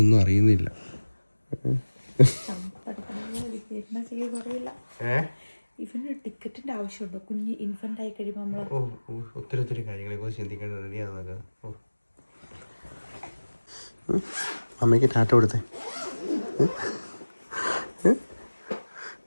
അറിയുന്നില്ല. ഇവന് ടിക്കറ്റിന്റെ ആവശ്യമുണ്ടോ? കുഞ്ഞ് ഇൻഫന്റ് ആയി കഴിയുമ്പോൾ നമ്മൾ ഒത്തിരി കാര്യങ്ങളെ കുറിച്ച് ചിന്തിക്കേണ്ട. റെഡിയാകുന്നൊക്കെ. അമ്മയ്ക്ക് ടാറ്റ കൊടുത്തേ.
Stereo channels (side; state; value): both; inverted; correlation -1.00